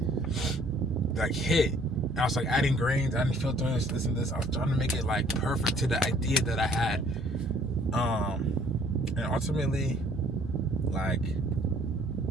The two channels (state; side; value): normal; both; correlation 0.59